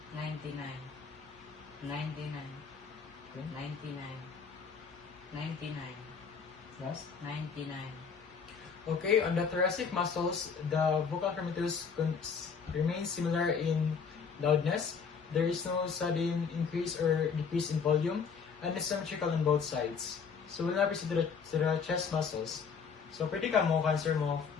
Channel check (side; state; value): right; quieter; 6.0 dB